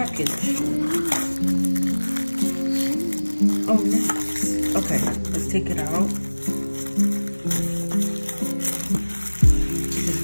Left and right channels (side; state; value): both; inverted; correlation -1.00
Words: Oh nice. Okay, let's take it out.